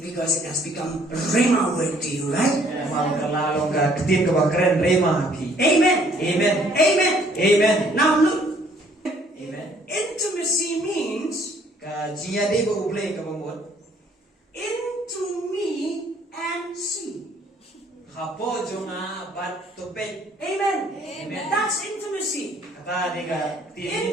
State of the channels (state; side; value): normal; both; correlation 0.62